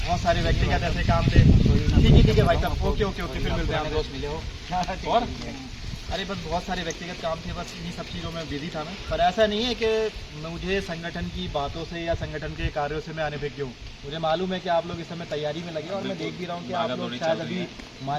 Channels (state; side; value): identical; both; correlation 1.00